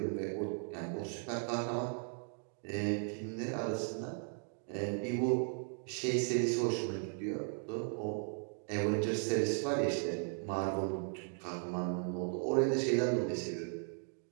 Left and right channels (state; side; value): silent; left; 53 dB below the other